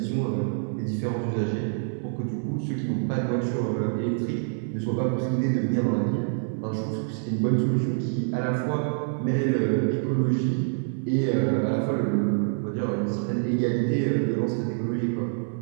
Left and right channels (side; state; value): left; silent; digital silence